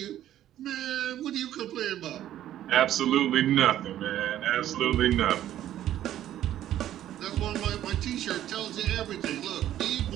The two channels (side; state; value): left; quieter; 12.2 dB